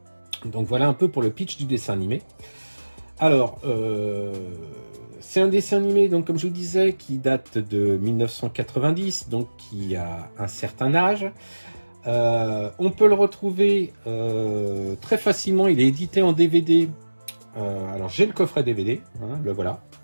Donc voilà un peu pour le pitch du dessin animé. Alors, c'est un dessin animé, donc comme je vous disais, qui date de 1990, donc qui a un certain âge. On peut le retrouver très facilement, il est édité en DVD. Alors j'ai le coffret DVD, hein, le voilà.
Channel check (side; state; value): both; inverted; correlation -1.00